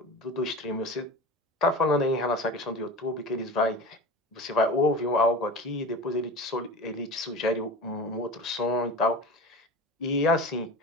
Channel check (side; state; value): both; normal; correlation 0.31